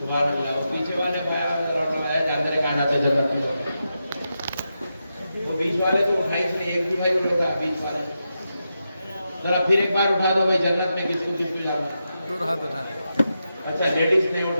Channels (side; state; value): both; inverted; correlation -0.87